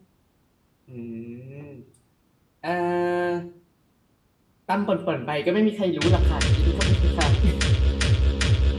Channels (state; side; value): identical; both; correlation 1.00